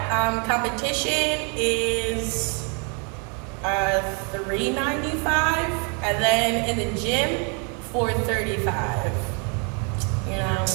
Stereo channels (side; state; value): left; quieter; 36.8 dB